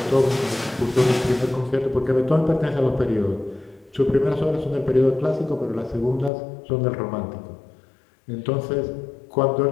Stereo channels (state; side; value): drops out; right; at 6.3 s